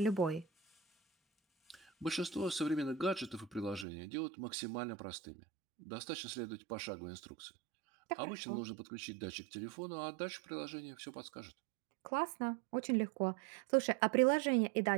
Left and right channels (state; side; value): drops out; left; at 3.9 s